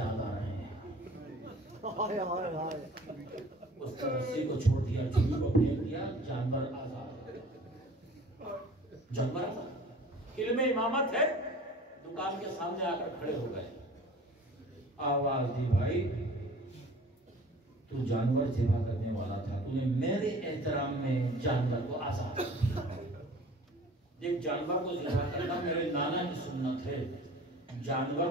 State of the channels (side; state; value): both; normal; correlation 0.46